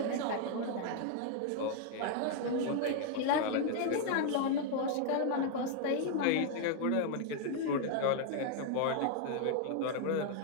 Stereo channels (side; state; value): both; different; correlation 0.00